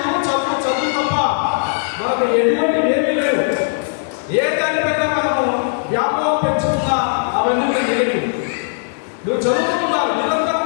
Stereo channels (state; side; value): silent; right; digital silence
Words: చదువు చదువు తప్ప మనకు ఎటువంటి ఏమీ లేవు. ఏ దానిపైన మనము వ్యామోహం పెంచుకున్నా అవన్నీ నెగటివ్. నువ్వు చదువుతూ ఉండాలి, నిరంతరం